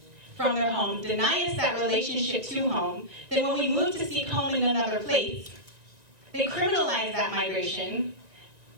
from their homes, deny us that relationship to home, then when we move to seek home in another place, they criminalize that migration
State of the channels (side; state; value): left; late; 1.9 ms